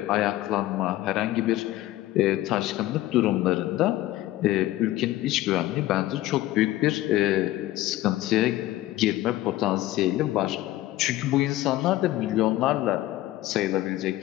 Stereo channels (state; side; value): quieter; right; 15.8 dB